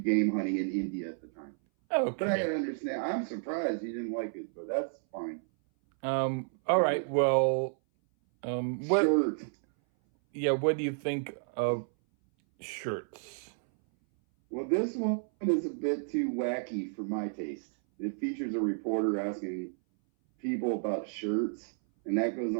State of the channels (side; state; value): left; silent; 57 dB below the other